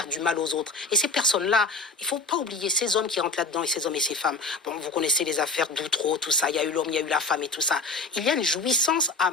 du mal aux autres. Et ces personnes-là, il ne faut pas oublier ces hommes qui rentrent là-dedans, et ces hommes et ces femmes. Bon, vous connaissez les affaires d'Outreau, tout ça, il y a eu l'homme, il y a eu la femme et tout ça. Il y a une jouissance à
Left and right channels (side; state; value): right; quieter; 3.6 dB